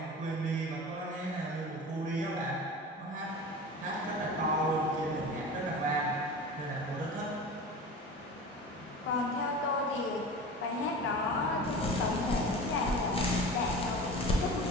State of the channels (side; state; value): both; normal; correlation 0.34